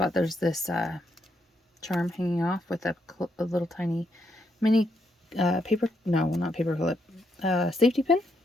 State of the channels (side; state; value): both; normal; correlation 0.78